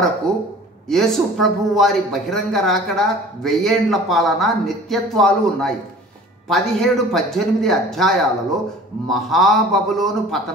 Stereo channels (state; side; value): normal; both; correlation 0.45